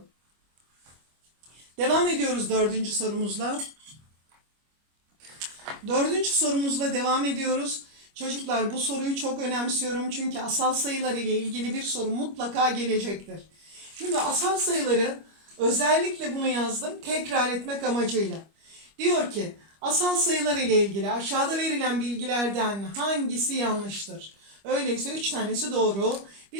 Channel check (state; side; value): late; left; 25 ms